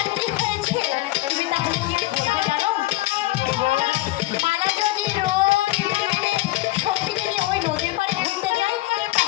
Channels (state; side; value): quieter; right; 18.3 dB